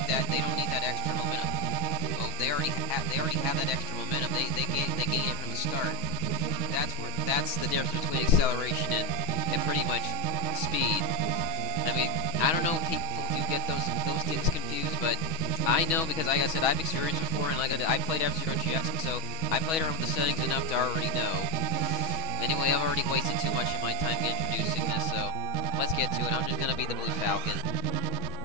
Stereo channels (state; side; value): late; right; 6.2 ms